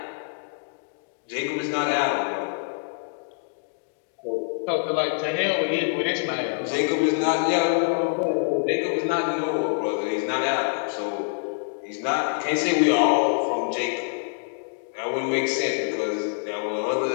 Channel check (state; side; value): silent; right; 61 dB below the other